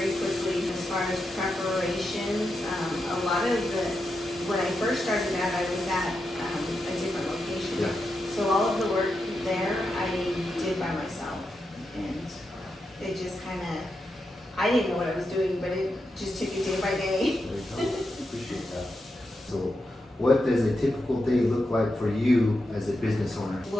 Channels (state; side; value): normal; both; correlation 0.87